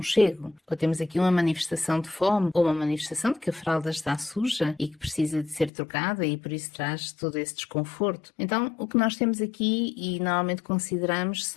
ou temos aqui uma manifestação de fome, ou uma manifestação de que a fralda está suja e que precisa de ser trocada e por isso traz todo esse desconforto. Então, o que nós temos aqui e normalmente consideramos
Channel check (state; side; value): drops out; right; at 5.7 s